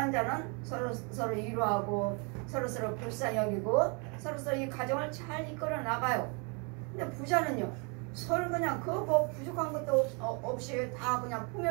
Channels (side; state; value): left; quieter; 34.2 dB